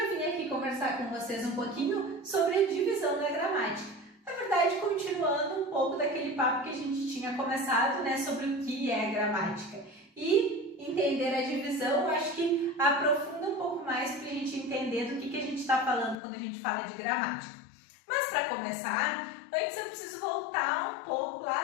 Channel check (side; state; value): right; drops out; at 16.2 s